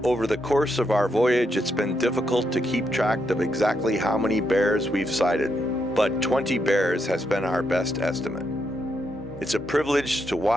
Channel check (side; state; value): both; normal; correlation 0.80